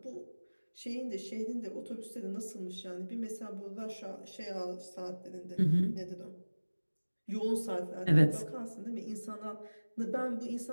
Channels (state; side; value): inverted; both; correlation -1.00